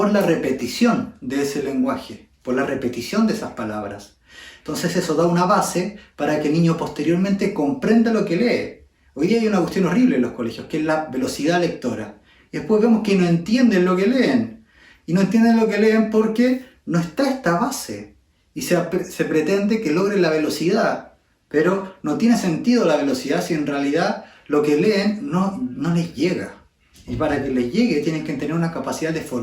la repetición de ese lenguaje, por la repetición de esas palabras. Entonces eso da una base para que el niño posteriormente comprenda lo que lee. Hoy día hay una cuestión horrible en los colegios, que es la velocidad lectora. Y después vemos que no entienden lo que leen. Y no entienden lo que leen porque no está esta base. Y se pretende que logren la velocidad. Pero no tiene sentido la velocidad si en realidad lo que leen no les llega. Y para que les llegue tienen que tener una capacidad de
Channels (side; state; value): both; identical; correlation 1.00